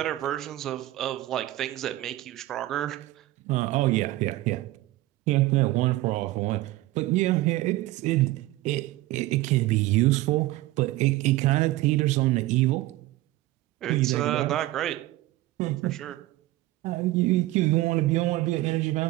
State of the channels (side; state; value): left; quieter; 17.3 dB